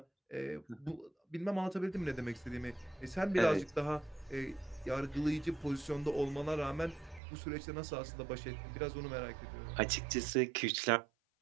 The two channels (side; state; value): left; drops out; at 7.2 s